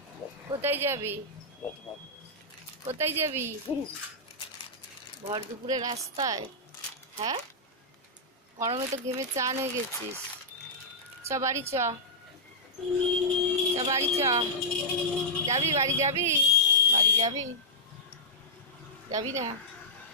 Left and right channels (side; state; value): both; normal; correlation -0.11